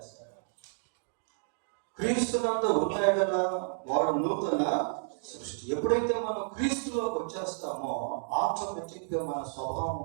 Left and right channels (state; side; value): silent; left; digital silence